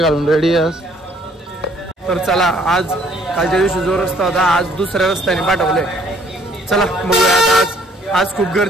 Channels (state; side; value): normal; both; correlation 0.62